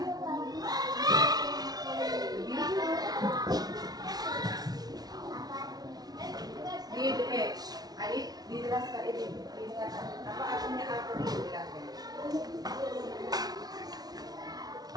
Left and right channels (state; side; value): late; left; 0.19 ms